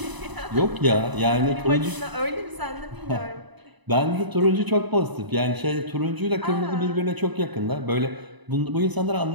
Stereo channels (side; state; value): left; late; 1.0 ms